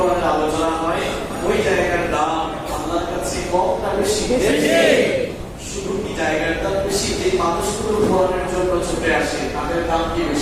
আলোচনা হয় ওই জায়গার দাম আল্লাহর কাছে কম না বেশি? শুধু কি জায়গার দাম বেশি, যে মানুষগুলো কোরআনের জন্য ছুটে আসে তাদের দাম কি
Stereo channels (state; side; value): identical; both; correlation 1.00